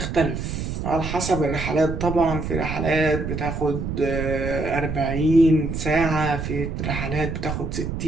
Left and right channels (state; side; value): noise; right; rumble, 4 dB below the sound